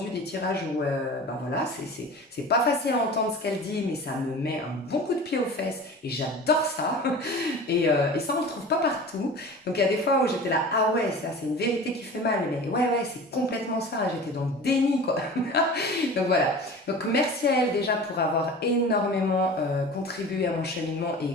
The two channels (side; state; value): both; normal; correlation 0.37